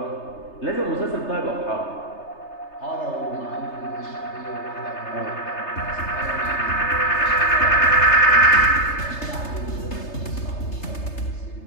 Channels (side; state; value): right; late; 3.3 ms